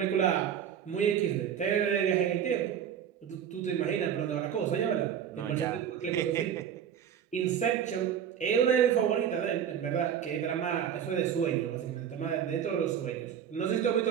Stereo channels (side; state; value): left; quieter; 8.8 dB